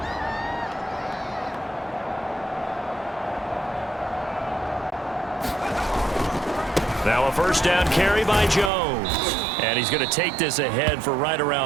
Now a 1st first down carry by Jones. And he's going to take this ahead for right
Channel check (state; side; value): drops out; left; at 8.7 s